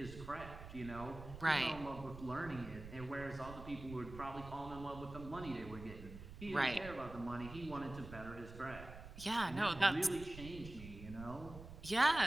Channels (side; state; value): right; noise; rumble, 13 dB below the sound